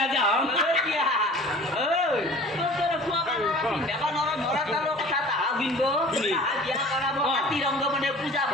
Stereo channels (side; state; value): both; normal; correlation 0.45